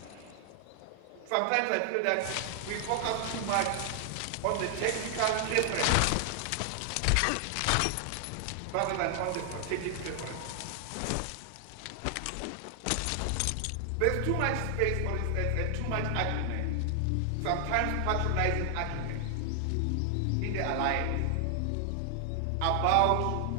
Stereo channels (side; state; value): both; different; correlation 0.00